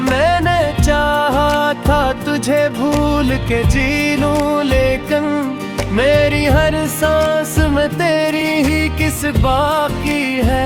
मैंने चाहा था तुझे भूल के जी लूं, लेकिन मेरी हर सांस में तेरी ही किस बाकी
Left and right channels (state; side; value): identical; both; correlation 1.00